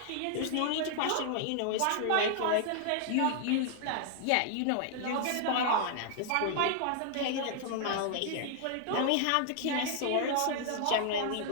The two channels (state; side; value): different; both; correlation 0.00